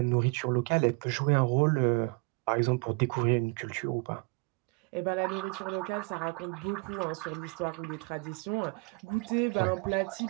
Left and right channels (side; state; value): left; quieter; 30.0 dB